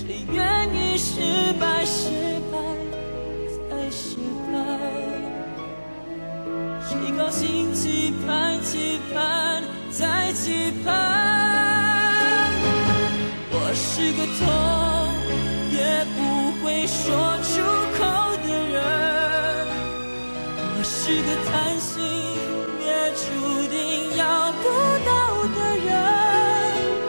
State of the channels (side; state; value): both; inverted; correlation -1.00